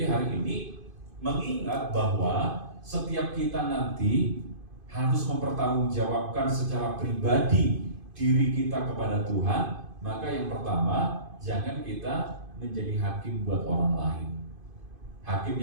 hari ini mengingat bahwa setiap kita nanti harus mempertanggungjawabkan secara pribadi diri kita kepada Tuhan. Maka yang pertama, jangan kita menjadi hakim buat orang lain. Hakim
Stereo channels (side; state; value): left; late; 2.5 ms